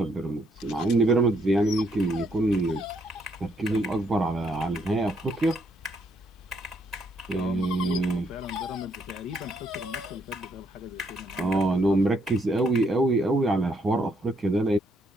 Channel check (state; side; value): normal; both; correlation 0.72